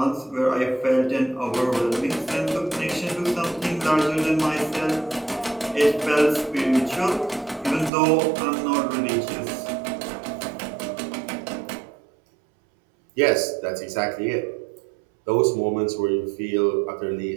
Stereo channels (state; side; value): drops out; left; at 7.9 s